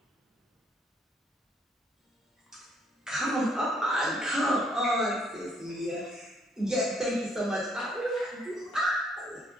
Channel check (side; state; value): both; normal; correlation 0.67